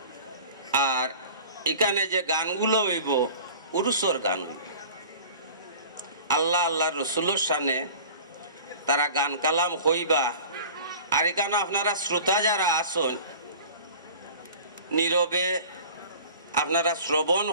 আর এখানে যে গানগুলো হইব উরুসর গান হইব, আল্লাহ আল্লাহ রসুলের সামনে তারা গান কালাম হইবা। আর এখানে আপনারা শ্রোতা যারা আসন নীরবে আপনারা শ্রবণ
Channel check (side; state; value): both; inverted; correlation -0.42